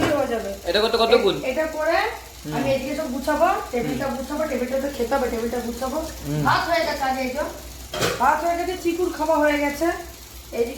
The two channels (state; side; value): identical; both; correlation 1.00